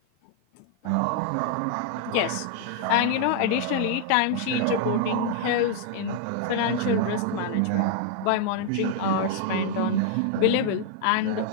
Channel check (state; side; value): different; both; correlation 0.00